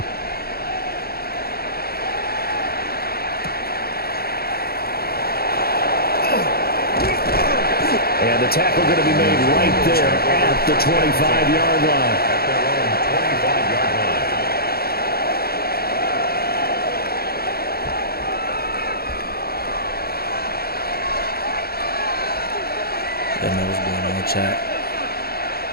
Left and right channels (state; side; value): late; right; 0.45 ms